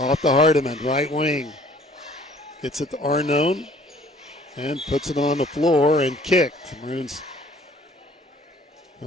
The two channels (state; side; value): normal; both; correlation 0.55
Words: to Hardiman, right wing. Gets it to Arnone, and puts it on the floor and kicked. The Maroons,